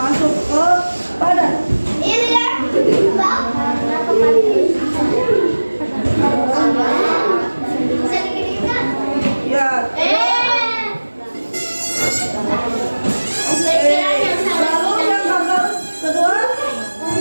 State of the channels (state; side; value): inverted; both; correlation -1.00